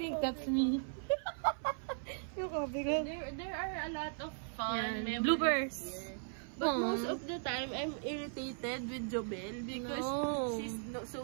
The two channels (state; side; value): silent; left; 53 dB below the other